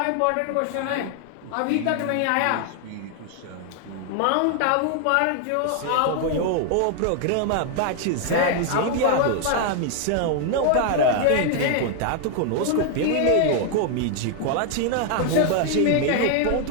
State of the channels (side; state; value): both; different; correlation 0.00